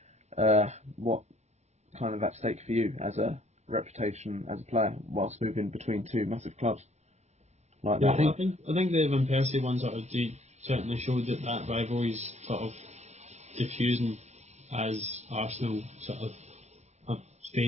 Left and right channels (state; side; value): late; left; 0.32 ms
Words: what kind of at stake for you as a reputation as a player whilst moving between two massive clubs. Like yeah, I think the Van Persie one sort of certainly showed that rivalry's sort of diffusing as Arsenal sort of have